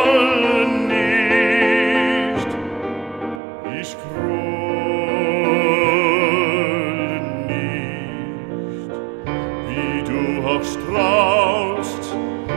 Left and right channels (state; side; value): drops out; left; at 3.4 s